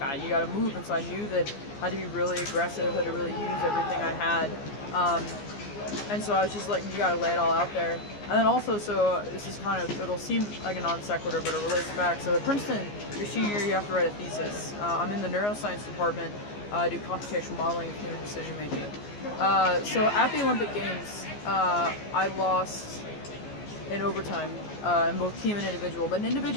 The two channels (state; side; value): late; right; 14 ms